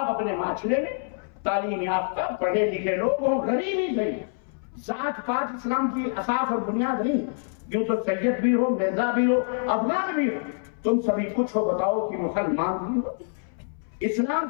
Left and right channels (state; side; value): silent; right; 61 dB below the other